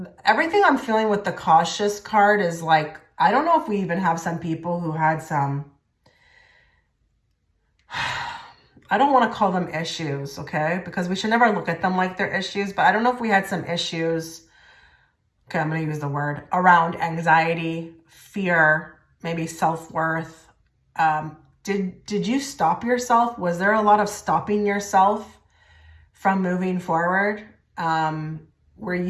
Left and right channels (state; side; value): identical; both; correlation 1.00